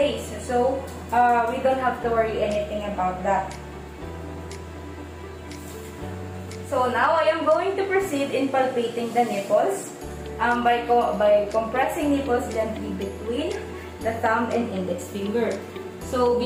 So we don't have to worry anything about that. So now I am going to proceed in palpating the nipples by compressing nipples gently between the thumb and index finger. So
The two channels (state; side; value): identical; both; correlation 1.00